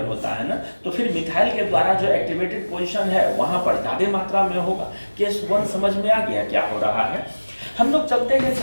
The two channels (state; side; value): inverted; both; correlation -1.00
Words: होता है ना, तो फिर मिथाइल के द्वारा जो एक्टिवेटेड पोजीशन है वहां पर ज्यादा मात्रा में होगा। केस 1 समझ में आ गया क्या हो रहा है? हम लोग चलते हैं